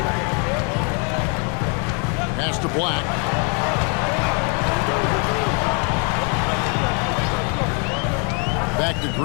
Pass to Black. Back to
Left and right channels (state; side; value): quieter; right; 36.6 dB